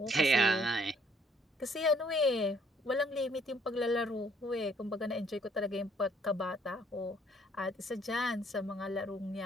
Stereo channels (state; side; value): normal; both; correlation 0.64